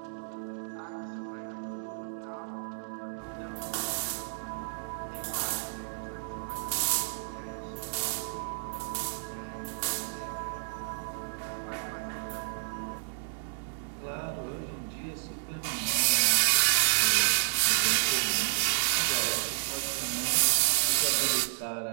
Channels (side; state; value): left; silent; digital silence